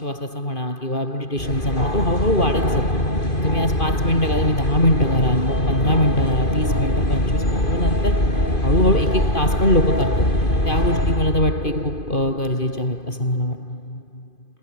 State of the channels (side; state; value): right; late; 2.5 ms